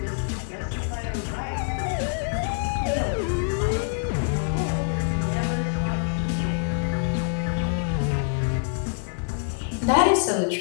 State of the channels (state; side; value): silent; right; digital silence